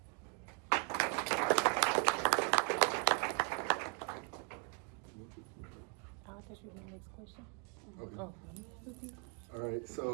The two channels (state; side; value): quieter; left; 36.2 dB